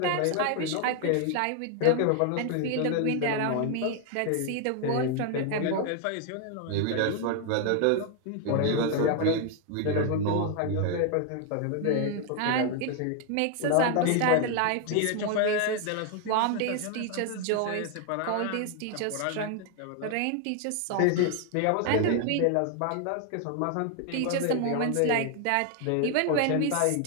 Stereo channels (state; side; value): different; both; correlation 0.00